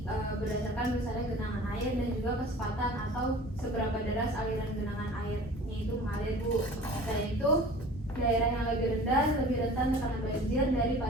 berdasarkan misalnya genangan air dan juga kecepatan atau seberapa deras aliran genangan airnya itu mengalir Bu. Selain itu, daerah yang lebih rendah lebih rentan terkena banjir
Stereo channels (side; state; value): both; normal; correlation 0.43